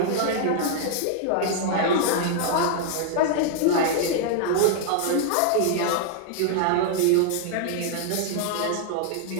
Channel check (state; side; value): different; both; correlation -0.01